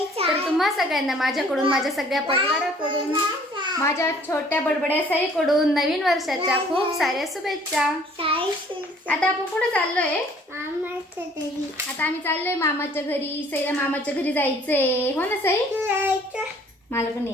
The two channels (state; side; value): normal; both; correlation 0.56